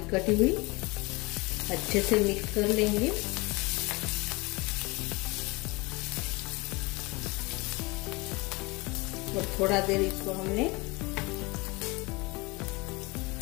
कटी हुई। अच्छे से मिक्स कर लेंगे। और थोड़ा देर इसको हमने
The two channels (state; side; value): quieter; right; 25.0 dB